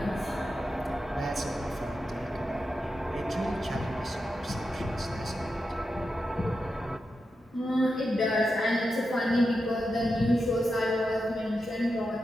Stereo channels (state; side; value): normal; both; correlation 0.88